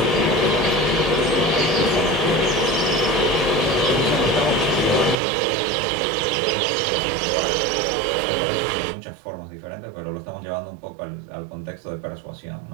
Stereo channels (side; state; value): left; drops out; at 5.2 s